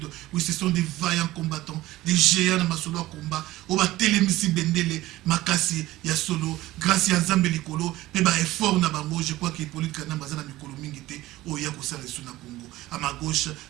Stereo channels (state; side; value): quieter; left; 17.0 dB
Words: Oui, ce sont des vaillants combattants, des géants de Masolo combat. Au Télémissi Bendele, Makasi, Yasolo, grâce à Nzambe Likolo, Peba effort na bango, je crois qu'il est politique na Bazana Mikolo Mingite, au Yakosa le Suna Congo. À ma gauche,